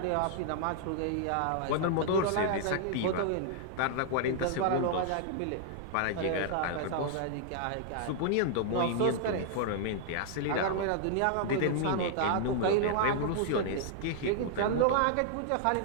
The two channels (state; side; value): different; both; correlation -0.01